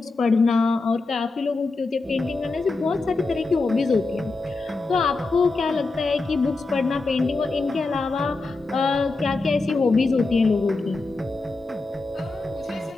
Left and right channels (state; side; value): quieter; right; 3.5 dB